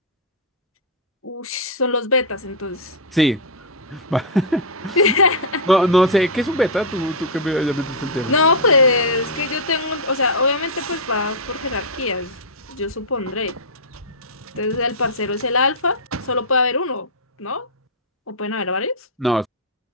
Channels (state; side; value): normal; both; correlation -0.06